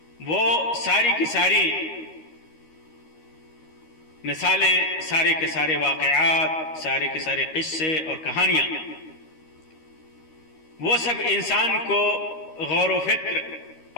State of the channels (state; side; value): late; right; 13 ms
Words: وہ ساری کی ساری مثالیں، سارے کے سارے واقعات، سارے کے سارے قصے اور کہانیاں، وہ سب انسان کو غور و فکر